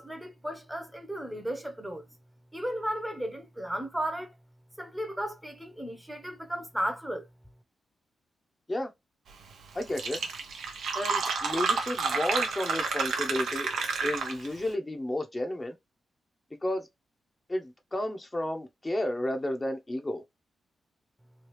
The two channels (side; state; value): both; normal; correlation 0.86